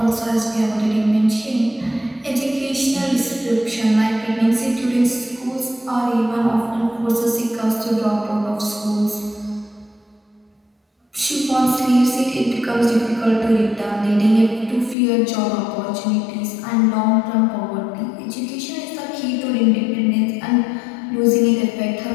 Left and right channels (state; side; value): drops out; right; at 15.0 s